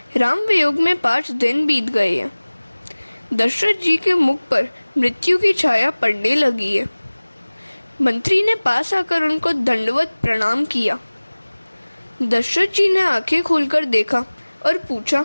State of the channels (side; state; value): both; inverted; correlation -1.00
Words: राम वियोग में 5 दिन बीत गए हैं। दशरथ जी के मुख पर मृत्यु की छाया पड़ने लगी है। मंत्री ने पास आकर उनको दंडवत प्रणाम किया। दशरथ जी ने आंखें खोलकर देखा और पूछा,